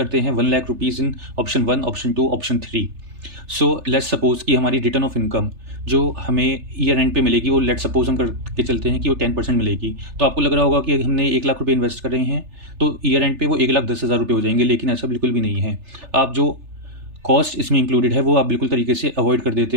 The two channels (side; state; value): left; late; 3.4 ms